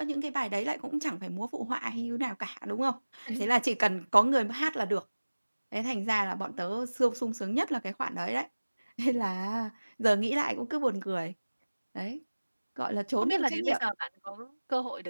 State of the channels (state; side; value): inverted; both; correlation -1.00